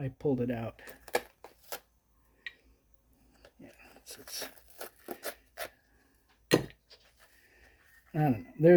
pulled it out. Yeah, I don't know.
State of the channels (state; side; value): identical; both; correlation 1.00